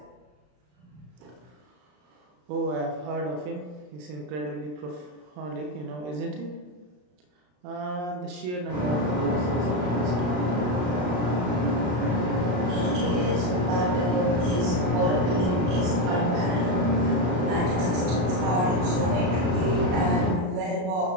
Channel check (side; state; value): left; late; 34 ms